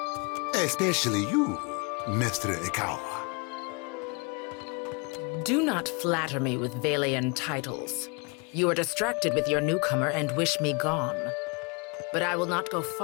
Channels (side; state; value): right; quieter; 32.2 dB